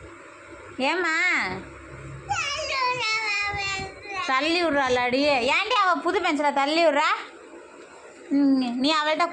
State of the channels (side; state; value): both; identical; correlation 1.00